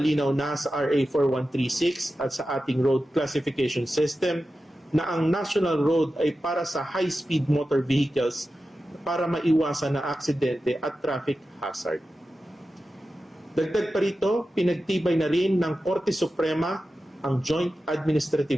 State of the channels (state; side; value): normal; both; correlation 0.93